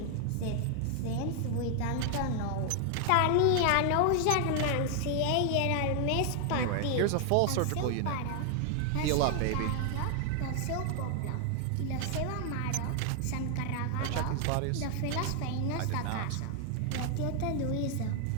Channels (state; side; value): different; both; correlation 0.00